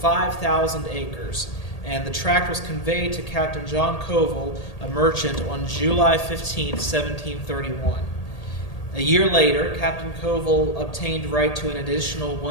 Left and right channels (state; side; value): late; right; 1.8 ms